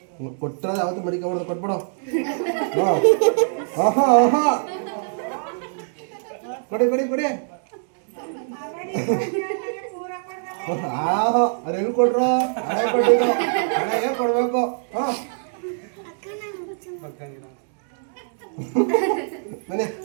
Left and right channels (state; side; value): silent; left; 63 dB below the other